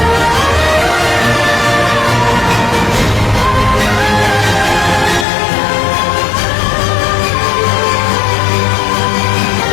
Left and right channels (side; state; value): right; drops out; at 5.2 s